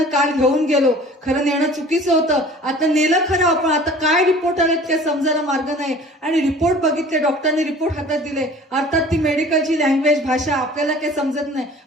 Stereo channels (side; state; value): both; normal; correlation 0.46